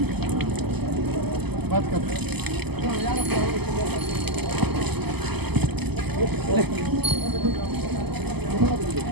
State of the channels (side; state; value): left; late; 0.98 ms